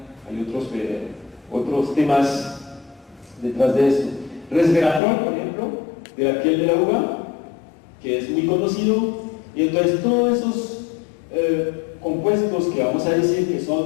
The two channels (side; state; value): right; drops out; at 5.0 s